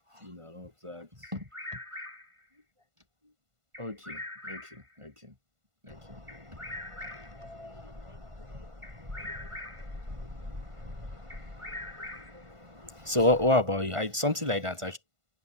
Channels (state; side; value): late; left; 1.5 ms